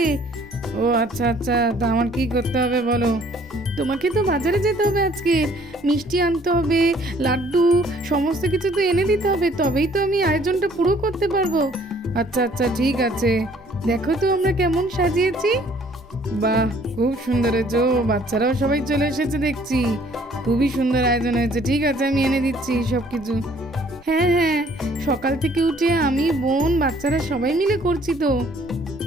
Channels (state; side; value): normal; both; correlation 0.59